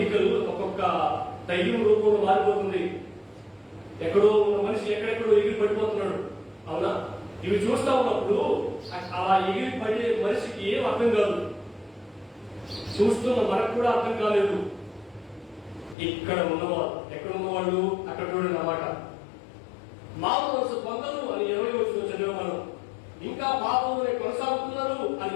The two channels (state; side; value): drops out; right; at 16.0 s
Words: ఒక్కొక్క దయ్యం రూపంలో మారిపోతుంది. ఎక్కడో ఉన్న మనిషి ఎక్కడెక్కడో ఎగిరి పడిపోతున్నాడు. అవునా? ఇవి చూస్తా ఉన్నప్పుడు అలా ఎగిరి పడే మనిషికి ఏం అర్థం కాదు. చూస్తున్న మనకు కూడా అర్థం కాలేదు. ఇక్కడ ఉన్నవాళ్ళు, ఎక్కడ ఉన్నవాళ్ళు అక్కడ చూడండి అన్నమాట. మారు మనసు పొందరు అని 20వ వచనం చదివే మనం. ఇంకా పాపంలోనే కొనసాగుతున్నారు అని